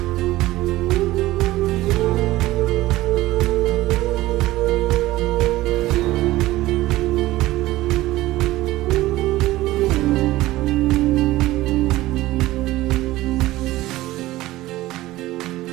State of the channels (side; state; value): left; quieter; 17.2 dB